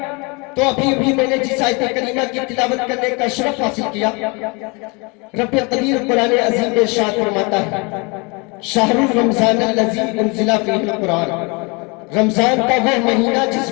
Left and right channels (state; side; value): quieter; right; 29.5 dB